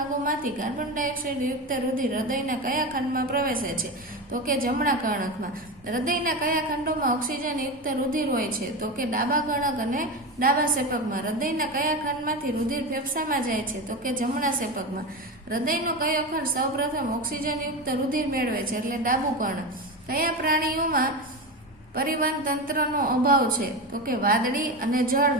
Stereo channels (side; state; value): both; normal; correlation 0.21